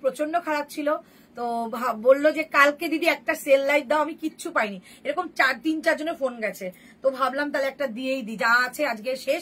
প্রচন্ড খারাপ ছিল, তো বললো যে কালকে দিদি একটা সেল লাইভ দাও, আমি কিচ্ছু পাইনি। এরকম 3-4 জনের ফোন গেছে, তো ভাবলাম তাহলে একটা দিয়েই দিই, যা আছে আজকে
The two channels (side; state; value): both; identical; correlation 1.00